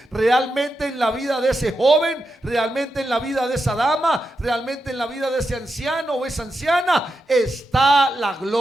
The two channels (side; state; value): both; normal; correlation 0.87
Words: realmente en la vida de ese joven, realmente en la vida de esa dama, realmente en la vida de ese anciano o esa anciana, está la